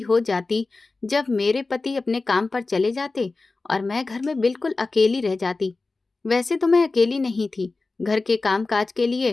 हो जाती जब मेरे पति अपने काम पर चले जाते और मैं घर में बिल्कुल अकेली रह जाती। वैसे तो मैं अकेली नहीं थी। घर के कामकाज के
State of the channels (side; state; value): right; quieter; 3.6 dB